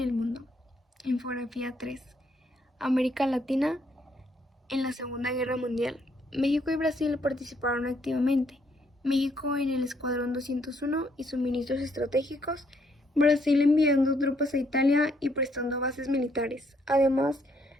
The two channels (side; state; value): both; normal; correlation 0.71